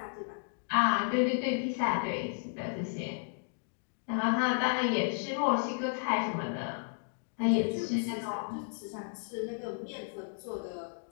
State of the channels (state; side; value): silent; right; digital silence